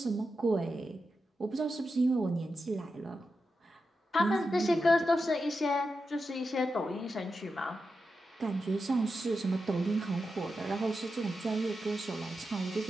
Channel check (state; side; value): normal; both; correlation 0.89